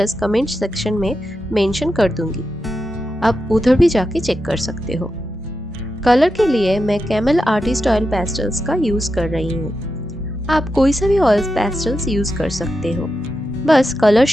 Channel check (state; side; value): normal; both; correlation 0.88